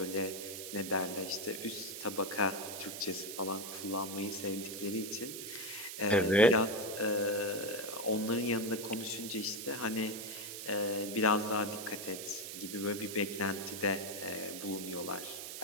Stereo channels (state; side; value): noise; right; hiss, 8 dB below the sound